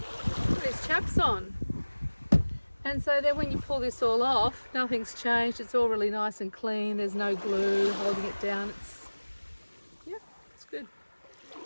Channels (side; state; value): both; inverted; correlation -1.00